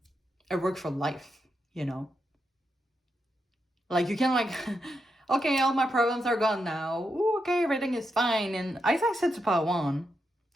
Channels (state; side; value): normal; both; correlation 0.84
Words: work for life, you know? Like, you can like, okay, all my problems are gone now. Ooh, okay, everything is fine. And as I said to part one,